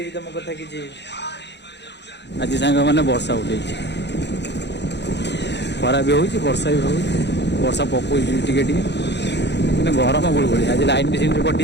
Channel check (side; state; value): right; late; 0.50 ms